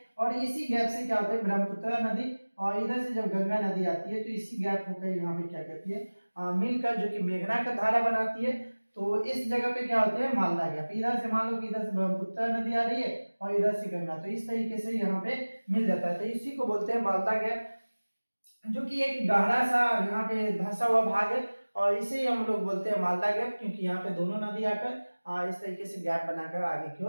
और इसी गैप से क्या होता है, ब्रह्मपुत्र नदी और इधर से जब गंगा नदी आती है तो इसी गैप होकर यहाँ पे क्या कहती है, मिलकर जो कि मेघना का धारा बनाती है। तो इस जगह पे क्या होते हैं, मालदा गैप। इधर से मान लो कि इधर से ब्रह्मपुत्र नदी आ रही है और इधर से गंगा, तो इस तरीके से यहाँ पे मिल जाता है, तो इसी को बोलते हैं मालदा गैप, जो कि एक गहरा सा यहाँ पे धंसा हुआ भाग है। और इसे हम लोग बोलते हैं मालदा गैप, क्योंकि यहाँ पे दोनों नदी आकर इस तरीके से गैप बनाकर आगे की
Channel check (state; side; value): inverted; both; correlation -1.00